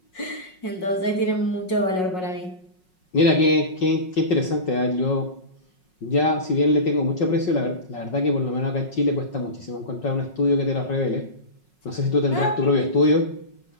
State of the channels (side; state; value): right; late; 5.5 ms